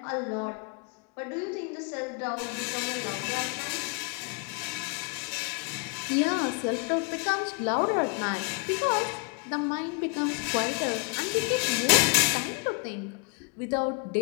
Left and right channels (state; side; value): quieter; right; 34.0 dB